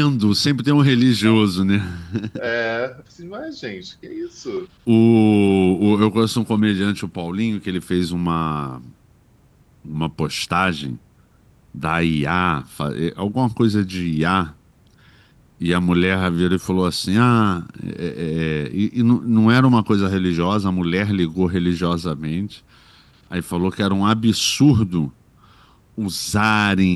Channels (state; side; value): identical; both; correlation 1.00